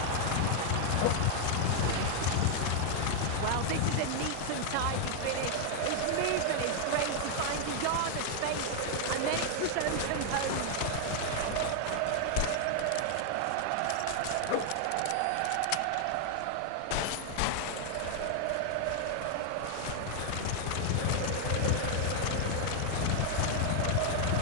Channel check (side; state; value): both; different; correlation 0.00